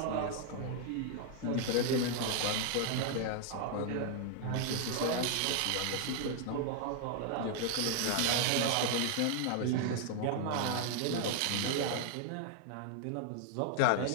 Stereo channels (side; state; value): both; different; correlation 0.00